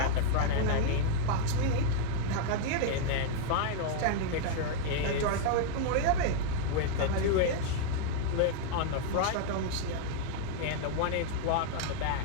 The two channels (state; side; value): different; both; correlation 0.00